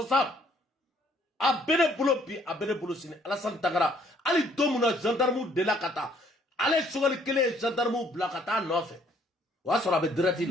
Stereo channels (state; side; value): normal; both; correlation 0.63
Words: a bene bolo sini Alassane Tangara ali domuna gendarme de la kata ale sugal kele gendarme bla kata nofe wa sora be direct